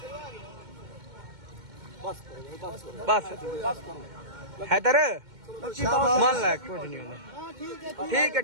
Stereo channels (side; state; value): left; late; 2.1 ms